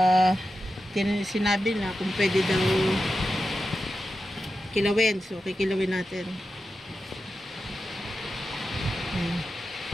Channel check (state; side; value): normal; both; correlation 0.91